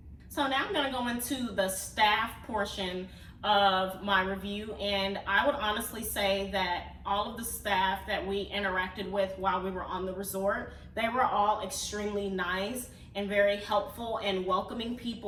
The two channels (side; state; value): both; identical; correlation 1.00